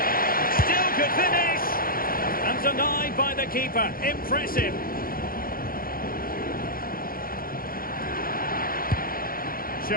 Still could finish. And denied by the keeper. Impressive.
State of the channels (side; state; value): right; late; 0.42 ms